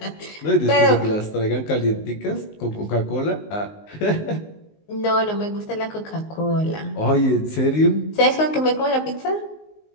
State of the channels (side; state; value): right; late; 19 ms